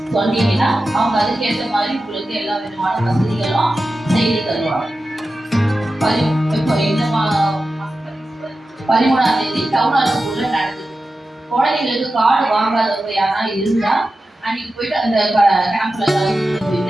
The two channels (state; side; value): normal; both; correlation 0.93